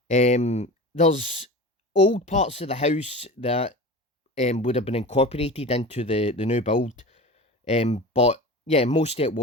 There's old parts of the house that would have been incorporated into the new build, but yeah, most of it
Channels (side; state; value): both; normal; correlation 0.33